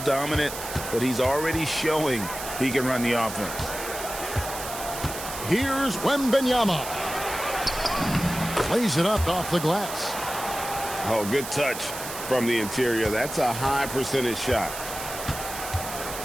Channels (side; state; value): right; noise; hiss, 9 dB below the sound